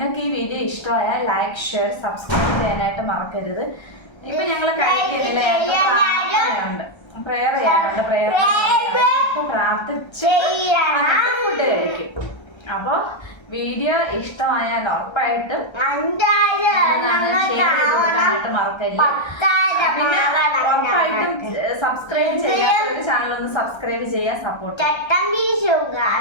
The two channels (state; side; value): late; right; 1.3 ms